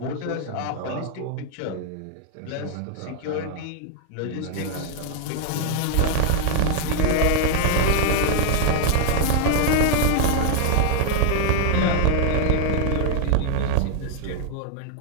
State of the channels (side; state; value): both; different; correlation 0.00